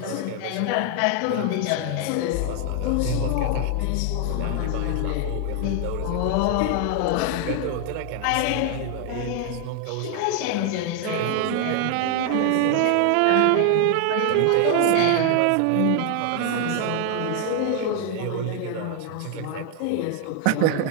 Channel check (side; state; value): both; different; correlation 0.00